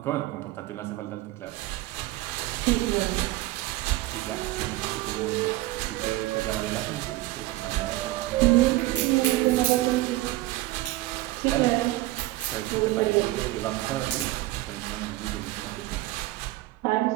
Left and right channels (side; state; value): left; quieter; 17.7 dB